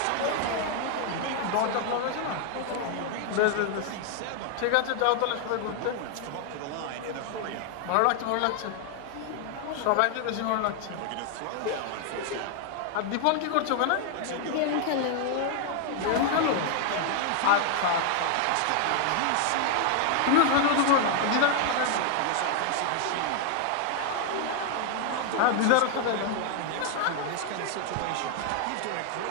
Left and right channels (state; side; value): different; both; correlation 0.00